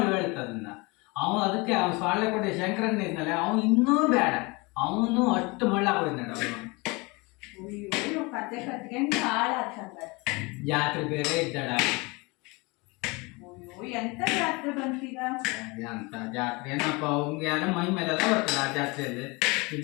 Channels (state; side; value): quieter; right; 26.4 dB